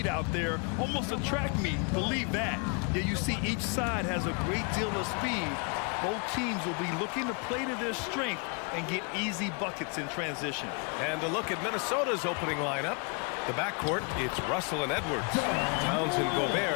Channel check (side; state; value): right; quieter; 35.1 dB